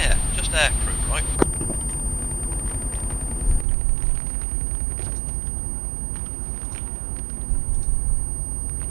just air crew, right?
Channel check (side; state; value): left; drops out; at 3.7 s